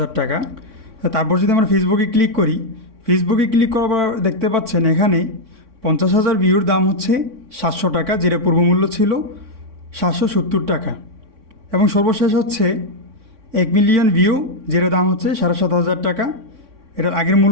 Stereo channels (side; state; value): left; late; 3.6 ms